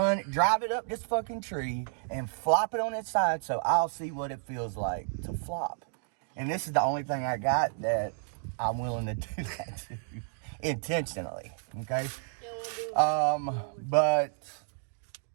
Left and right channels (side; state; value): left; silent; 57 dB below the other